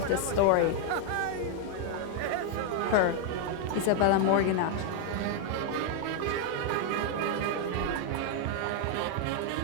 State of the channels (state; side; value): different; both; correlation 0.00